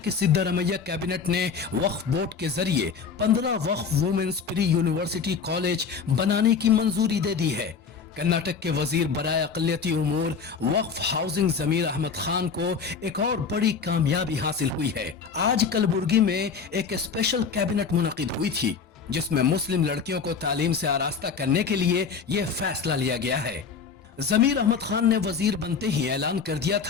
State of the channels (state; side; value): quieter; right; 5.9 dB